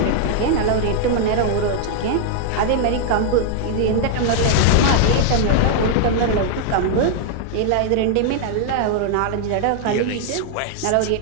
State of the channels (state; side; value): different; both; correlation 0.00